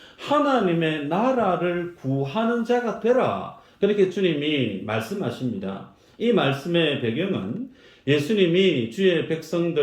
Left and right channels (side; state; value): both; identical; correlation 1.00